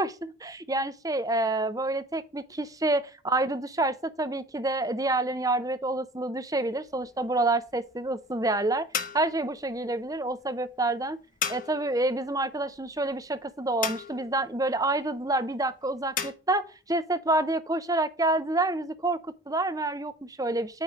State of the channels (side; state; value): both; normal; correlation 0.45